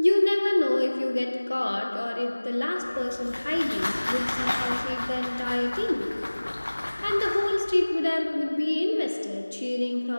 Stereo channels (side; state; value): both; inverted; correlation -1.00